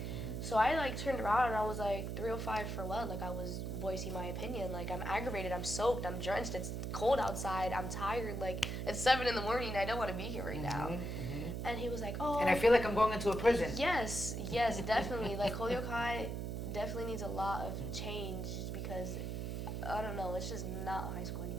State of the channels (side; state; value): right; noise; hum, 3 dB below the sound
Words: So I, like, turned around, and I was like, 305 for what? Like, I was voicing my opinion. Like, I'm aggravated, I'm soaked, I'm drenched, it's cold outside, I'm tired. Like, it's 7 in the morning, I don't want to be here right now. And he was like, oh. And I feel like I'm going into a prison. Yes, definitely. Like, Holyoke High definitely needs a lot of change because, I don't know, it's just not a high school